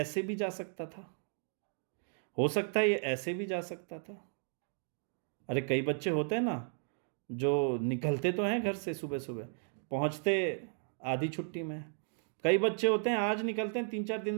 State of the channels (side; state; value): left; silent; 55 dB below the other